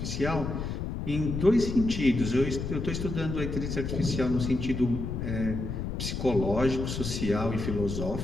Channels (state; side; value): noise; left; rumble, 4 dB below the sound